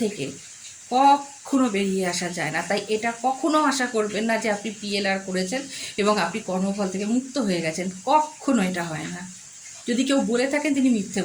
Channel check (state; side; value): identical; both; correlation 1.00